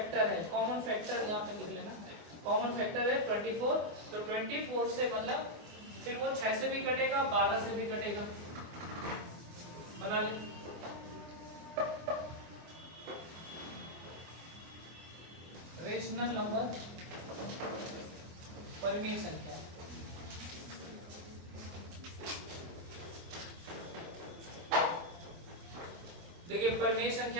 है, कॉमन फैक्टर यहाँ पर लिख लेना, कॉमन फैक्टर है 24। तो 24 से मतलब फिर वो 6 से भी कटेगा, 12 से भी कटेगा। बना ले। रेशनल नंबर परिमेय संख्या। देखिए परिमेय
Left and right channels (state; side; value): late; left; 24 ms